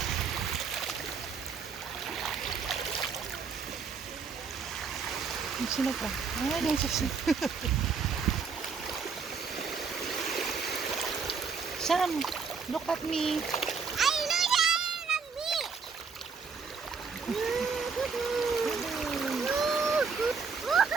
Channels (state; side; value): quieter; left; 5.4 dB